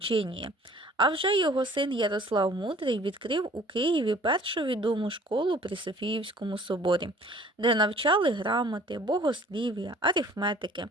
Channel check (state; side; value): normal; both; correlation 0.52